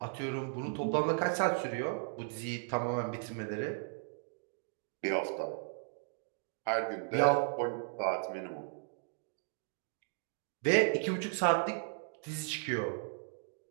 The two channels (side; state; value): left; silent; digital silence